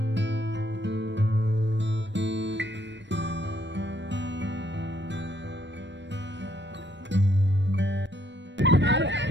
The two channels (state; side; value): late; left; 0.53 ms